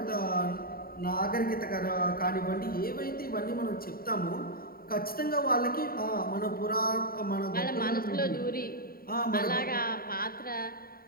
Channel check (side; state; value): right; late; 0.43 ms